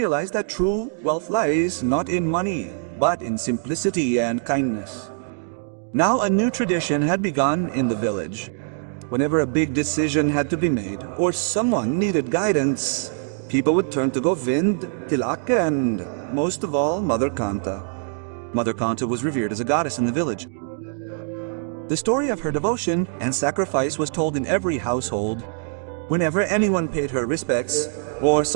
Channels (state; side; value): silent; left; digital silence